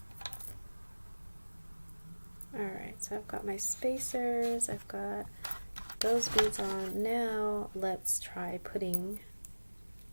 Alright, so I've got my spacers, I've got those beads on. Now let's try putting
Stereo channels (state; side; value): inverted; both; correlation -1.00